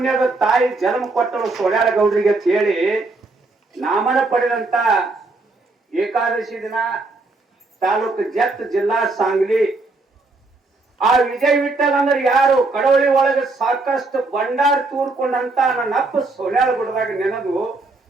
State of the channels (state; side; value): quieter; left; 3.4 dB